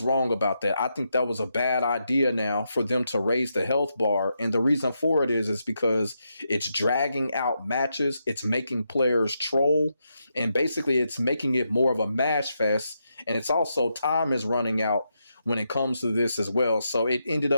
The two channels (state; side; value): inverted; both; correlation -0.83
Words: wrong about that. I think that was a bad idea now for them to raise the health bar. And the reason for it is because it's dragging out matches. It's making players troll. And basically, it's making it more of a mash fest. And it's also time is running out when it comes to this as well. So it ended